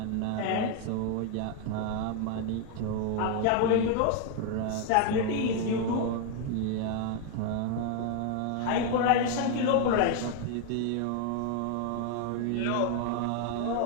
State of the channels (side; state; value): both; different; correlation 0.00